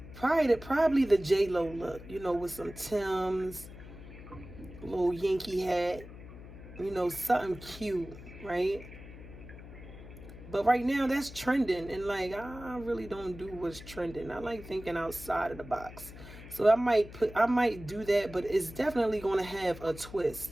probably the J-Lo look, you know, with some Timbs, little Yankee hat, you know, something cute, right? But right now that's trending, and like, I really don't do what's trending. I like thinking outside of the box. So I might do that, but it's definitely going to have a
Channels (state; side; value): noise; left; hum, 15 dB below the sound